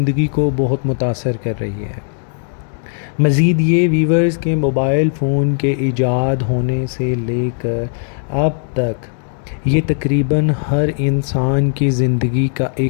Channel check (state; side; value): silent; right; 68 dB below the other